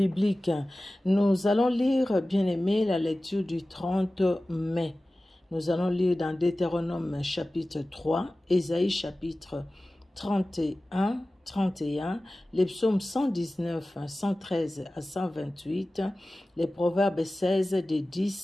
Nous allons lire, bien-aimés, la lecture du 30 mai. Nous allons lire dans Deutéronome chapitre 3, Ésaïe chapitre 31, les psaumes 119, 113 à 128, les proverbes 16 de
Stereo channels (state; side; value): normal; both; correlation 0.96